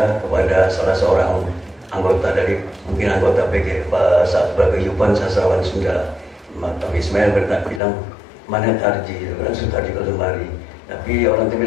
kepada salah seorang anggota dari PG Paguyuban Sastrawan Sunda. Taufik Ismail bilang, mana Tarji? Kan Tarji kalau kemari. Tapi orang itu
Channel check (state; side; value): drops out; right; at 7.8 s